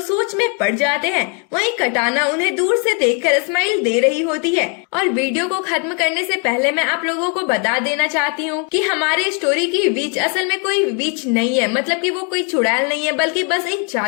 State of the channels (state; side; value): quieter; right; 37.5 dB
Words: सोच में पड़ जाते हैं। वहीं कटाना उन्हें दूर से देखकर स्माइल दे रही होती है। और वीडियो को खत्म करने से पहले मैं आप लोगों को बता देना चाहती हूँ कि हमारे स्टोरी की विच असल में कोई विच नहीं है, मतलब कि वो कोई चुड़ैल नहीं है, बल्कि बस एक